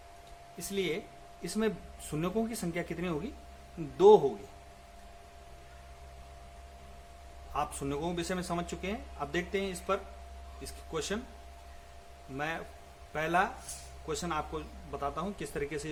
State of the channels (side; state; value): both; identical; correlation 1.00